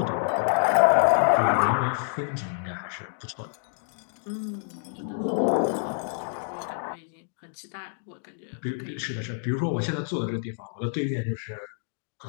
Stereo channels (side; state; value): right; silent; digital silence